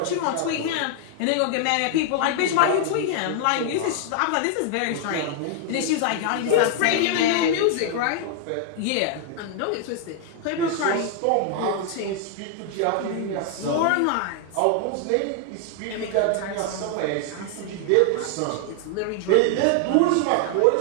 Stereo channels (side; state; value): both; different; correlation 0.00